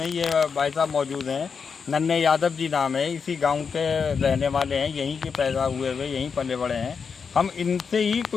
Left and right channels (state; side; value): quieter; right; 5.9 dB